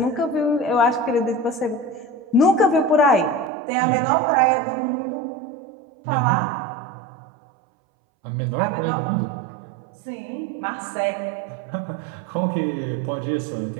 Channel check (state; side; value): drops out; left; at 3.5 s